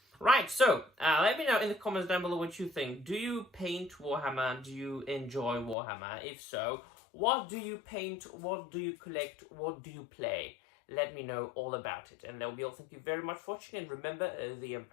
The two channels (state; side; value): drops out; right; at 5.8 s